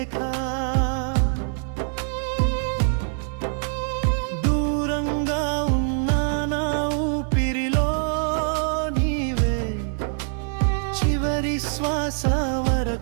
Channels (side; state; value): left; silent; digital silence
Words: దూరంగా ఉన్నా నా ఊపిరిలో నీవే, చివరి శ్వాస